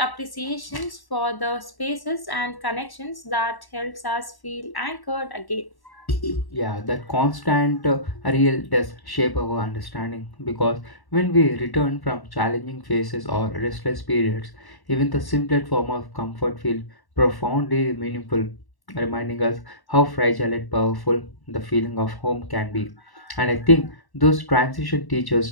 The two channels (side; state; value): right; late; 1.1 ms